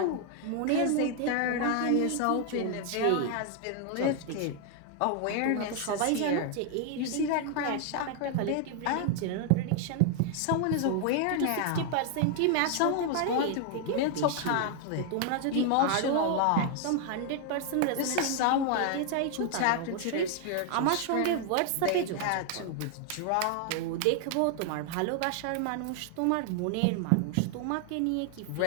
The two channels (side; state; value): both; different; correlation 0.00